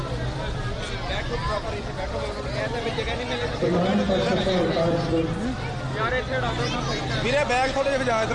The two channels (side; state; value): both; identical; correlation 1.00